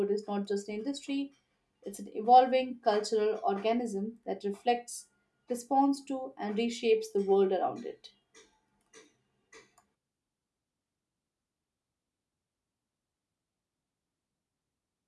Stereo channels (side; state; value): both; identical; correlation 1.00